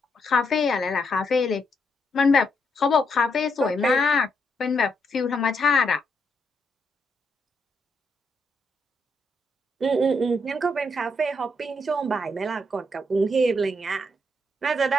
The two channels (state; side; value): normal; both; correlation 0.79